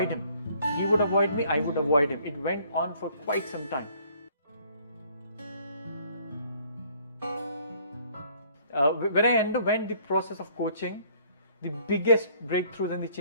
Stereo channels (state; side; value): inverted; both; correlation -0.60